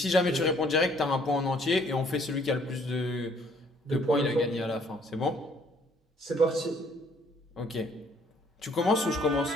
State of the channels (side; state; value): both; normal; correlation 0.62